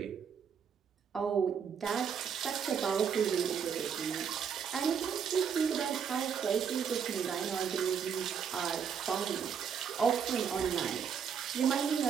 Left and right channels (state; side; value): quieter; left; 7.1 dB